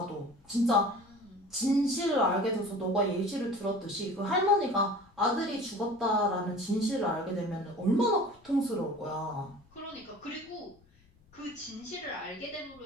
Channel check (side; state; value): left; noise; rumble, 29 dB below the sound